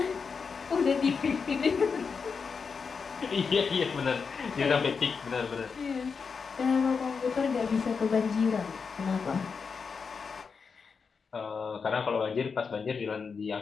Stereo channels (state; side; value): quieter; right; 5.5 dB